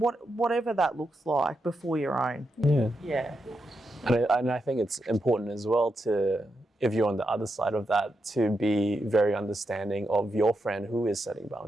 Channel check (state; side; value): normal; both; correlation 0.85